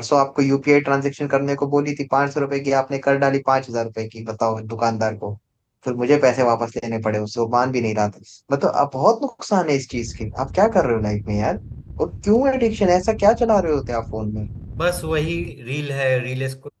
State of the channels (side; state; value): both; identical; correlation 1.00